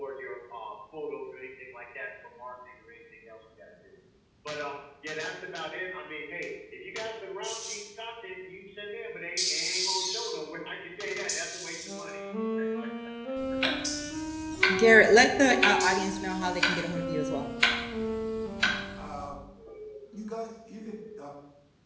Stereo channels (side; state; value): both; identical; correlation 1.00